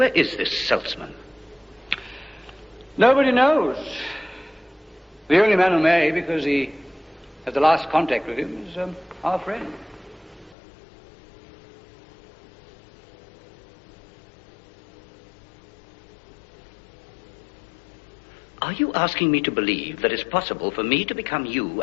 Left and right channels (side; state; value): right; drops out; at 10.6 s